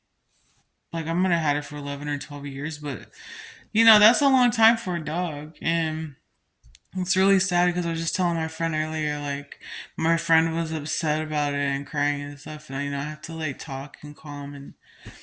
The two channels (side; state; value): both; identical; correlation 1.00